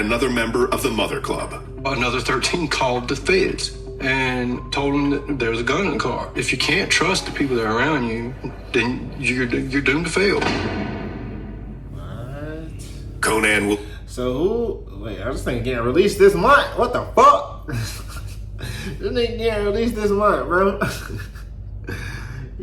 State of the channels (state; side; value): identical; both; correlation 1.00